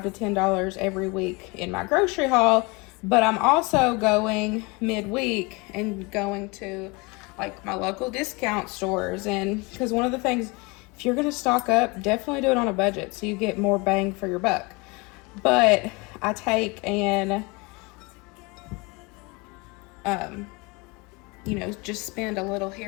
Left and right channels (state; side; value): quieter; right; 27.3 dB